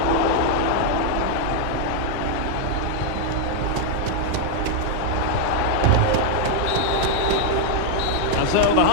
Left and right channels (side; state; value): both; different; correlation 0.00